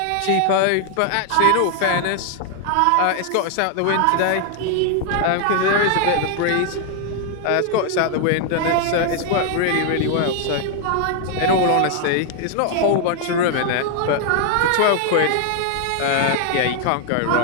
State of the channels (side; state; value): both; different; correlation 0.00